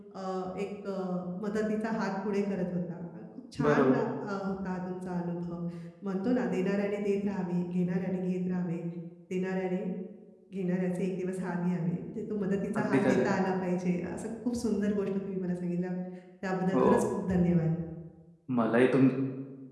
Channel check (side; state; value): both; identical; correlation 1.00